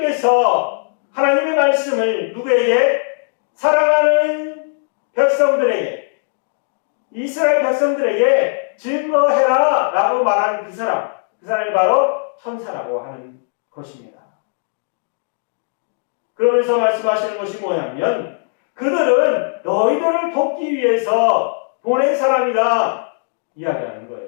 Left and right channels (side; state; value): right; silent; digital silence